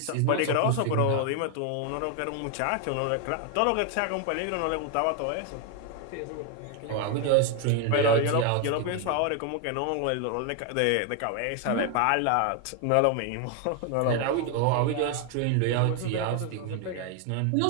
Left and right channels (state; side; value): different; both; correlation 0.01